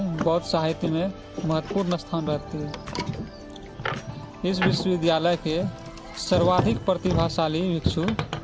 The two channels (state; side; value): identical; both; correlation 1.00